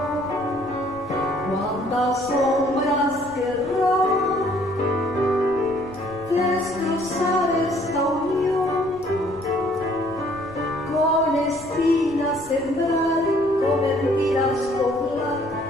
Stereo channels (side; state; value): left; noise; rumble, 21 dB below the sound